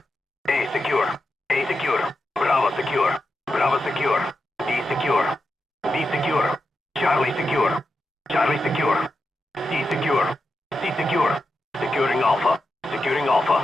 A secure. A secure. Bravo secure. Bravo secure. B secure. B secure. Charlie secure. Charlie secure. C secure. C secure. Securing Alpha. Securing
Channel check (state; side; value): normal; both; correlation 0.88